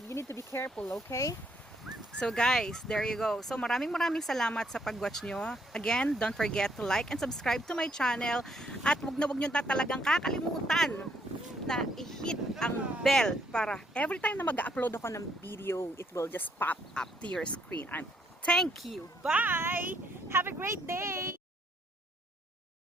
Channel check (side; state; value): both; normal; correlation 0.70